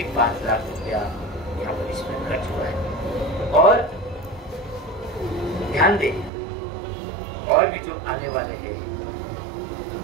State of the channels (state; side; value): drops out; left; at 6.3 s